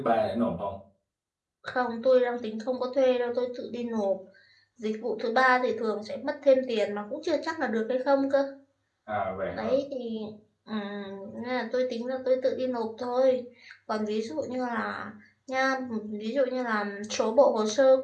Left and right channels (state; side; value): identical; both; correlation 1.00